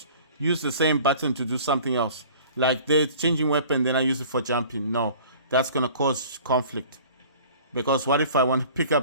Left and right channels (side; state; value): both; inverted; correlation -0.47